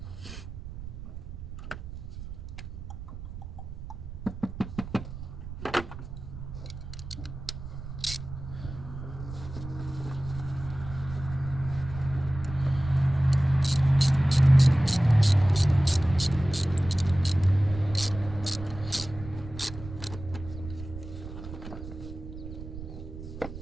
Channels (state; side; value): noise; right; rumble, 11 dB below the sound